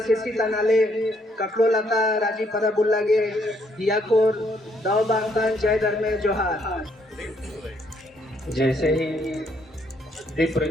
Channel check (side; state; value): both; normal; correlation 0.70